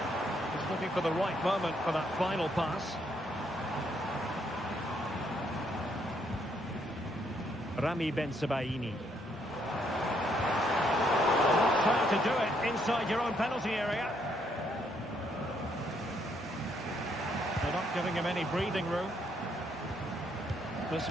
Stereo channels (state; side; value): normal; both; correlation 0.72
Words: He's looking for the right moment for that final pass. Rami Ben-Sebaini. Trying to do it inside your own penalty area. They're not giving him any breathing room. This